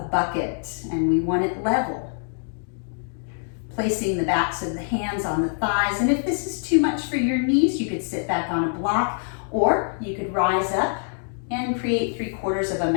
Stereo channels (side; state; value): right; silent; digital silence